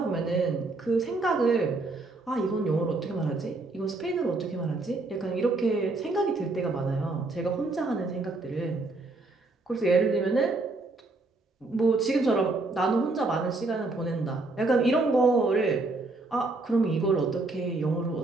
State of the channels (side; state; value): left; quieter; 3.3 dB